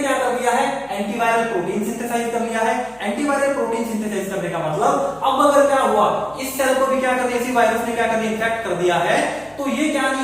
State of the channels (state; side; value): noise; left; hum, 29 dB below the sound